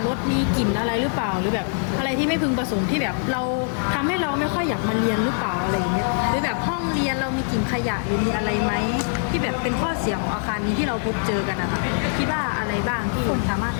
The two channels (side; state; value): right; silent; 63 dB below the other